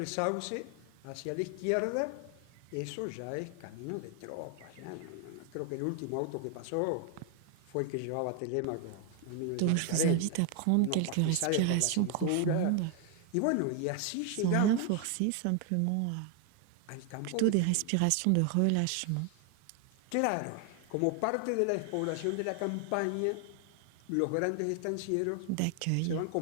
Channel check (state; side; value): different; both; correlation 0.00